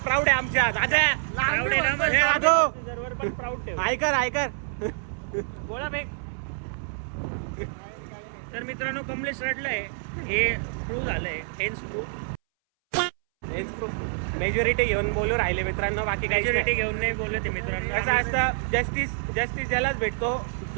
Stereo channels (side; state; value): left; silent; 60 dB below the other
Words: प्राऊड आहे आमच्या दादा. प्राऊड आहे ना मग. हे दादू सर्व्हर पण प्राऊड ठेव. ऐकर बोला बे. तर मित्रांनो, कमलेश रडलाय. हे प्रूव्ह झालंय. मेजॉरिटी घेऊन बोलू राहिले मित्रांनो. बाकी काही मेजॉरिटी घेऊन नाही बोलत मित्रांनो. कसं असतं, जस्टिस ज्यालाच भेटतो